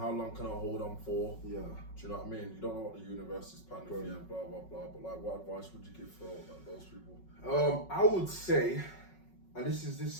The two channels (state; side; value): late; right; 5.4 ms